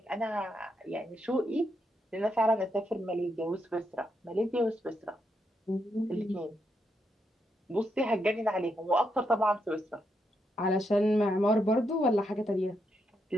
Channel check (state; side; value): normal; both; correlation 0.80